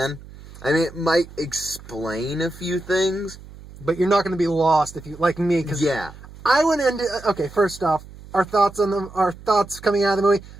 I mean, it might explain a few things. But you're not going to be lost if you, like me, because yeah. I went into, okay, first off, our thoughts coming out of the movie.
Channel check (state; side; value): noise; right; hum, 18 dB below the sound